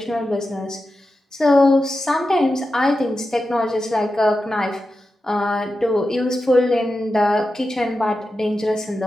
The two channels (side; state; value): both; normal; correlation 0.91